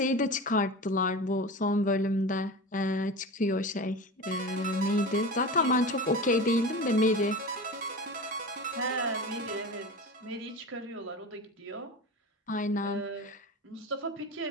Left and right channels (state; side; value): normal; both; correlation 0.30